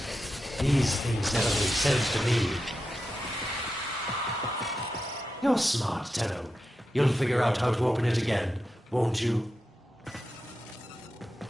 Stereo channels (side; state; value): both; normal; correlation 0.89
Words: These things never make sense to me. You're smart, Tenno. You'll figure out how to open it again, won't you?